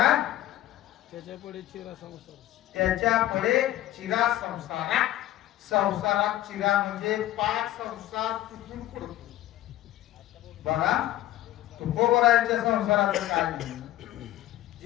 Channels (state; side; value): quieter; right; 14.2 dB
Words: त्याच्या पुढे चिरा संसार, त्याच्या पुढे चिरा संसारात. संसारात चिरा म्हणजे पाच संसार तुटून पडतो. बघा तुकोबराच्या संसाराचं काय नाही.